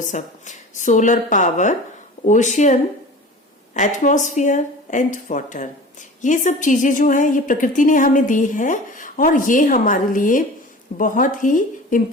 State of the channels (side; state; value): both; normal; correlation 0.38